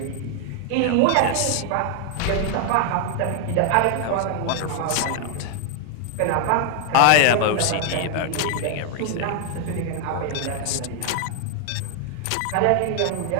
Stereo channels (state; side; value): different; both; correlation 0.00